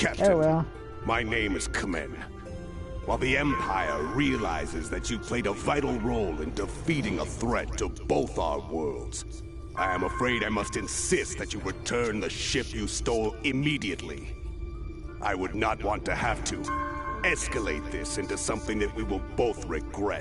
Oh well. my name is Kamen. While the Empire realizes that you played a vital role in defeating a threat to both our worlds, I am afraid I must insist that you return the ship you stole immediately. I would not want to have to escalate this into something that we will both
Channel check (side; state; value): both; identical; correlation 1.00